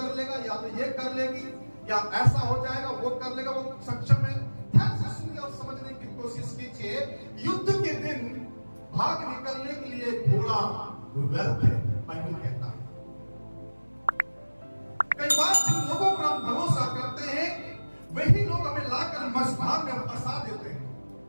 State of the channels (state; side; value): inverted; both; correlation -1.00